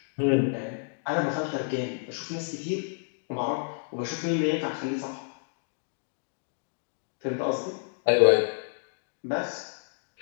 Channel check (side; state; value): right; silent; digital silence